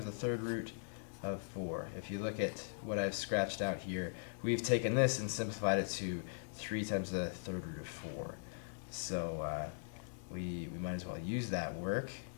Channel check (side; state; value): right; silent; digital silence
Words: the third root of 4. If you look at what I've scratched out here, we've taken this and simplified it to 3 times the third root of 4. So we might as well use that work.